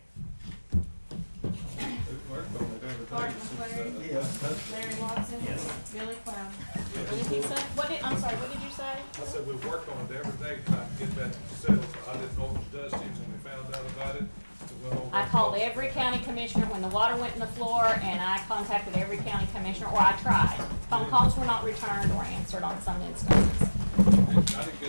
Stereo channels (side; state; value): both; inverted; correlation -1.00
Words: We've worked on it every Clark day since, McClary, Yeah. Larry Watson, Yes. Billy Cloud. What did he say? I'm sorry, what did you say? I said we've worked on it every day trying to get that settled. I didn't know it was dusty when we found out about it. We went over I and called talked. every county commissioner when the water went in the floor, and I contacted every county commissioner, or I tried. Phone calls were not returned or answered on some instances. I didn't